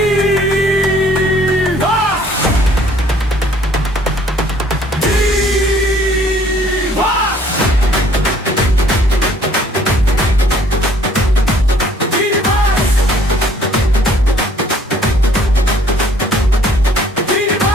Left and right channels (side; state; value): both; normal; correlation 0.59